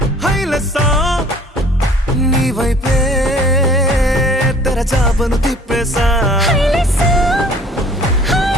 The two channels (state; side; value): normal; both; correlation 0.52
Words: హైలెస్సా నీ వైపే తెరచాపను తిప్పేసా హైలెస్సా